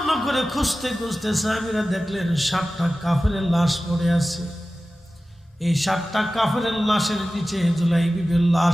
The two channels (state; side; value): normal; both; correlation 0.95